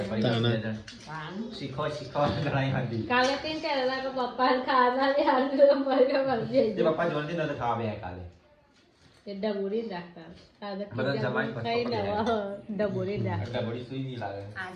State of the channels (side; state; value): both; identical; correlation 1.00